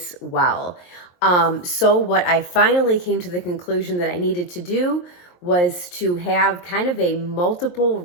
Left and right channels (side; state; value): right; late; 23 ms